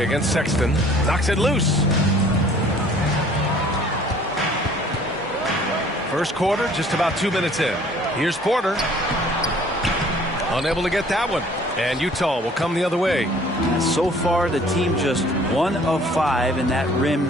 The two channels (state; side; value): normal; both; correlation 0.54